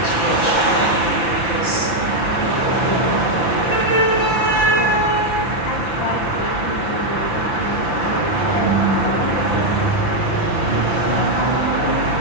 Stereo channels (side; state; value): right; late; 5.9 ms